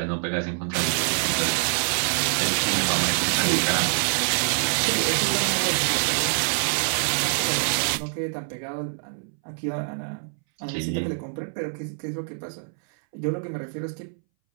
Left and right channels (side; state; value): left; silent; 61 dB below the other